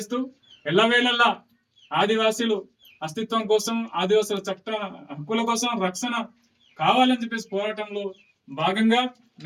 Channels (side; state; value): both; identical; correlation 1.00